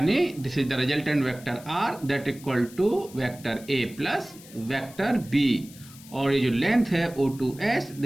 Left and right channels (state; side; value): noise; left; hiss, 20 dB below the sound